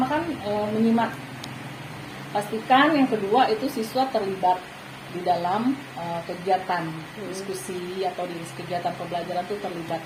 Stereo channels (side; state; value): both; identical; correlation 1.00